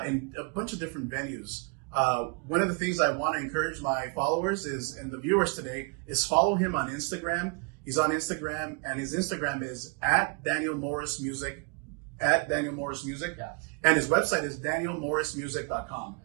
a bunch of different venues. One of the things I want to encourage my followers is, and the viewers today, is follow him on Instagram. He's on Instagram, and his Instagram is @DanielMorrisMusic, @DanielMorrisMusic, and his website is DanielMorrisMusic.com.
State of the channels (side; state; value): left; quieter; 34.8 dB